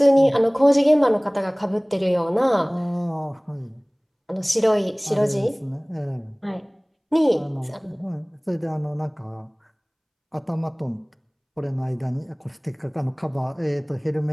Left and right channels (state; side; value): identical; both; correlation 1.00